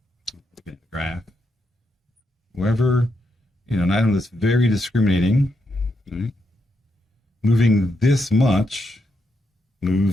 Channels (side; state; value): both; normal; correlation 0.82